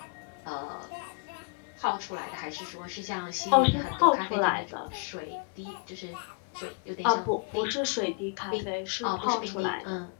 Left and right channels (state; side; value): quieter; right; 36.0 dB